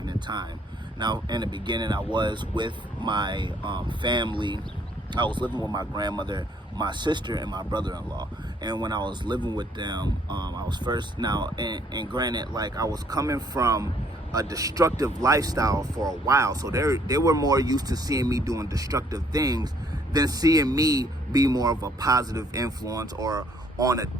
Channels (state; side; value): normal; both; correlation 0.64